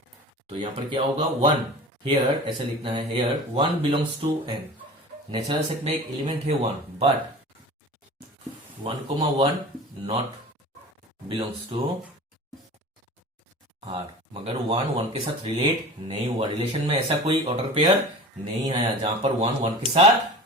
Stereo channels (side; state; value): both; normal; correlation 0.37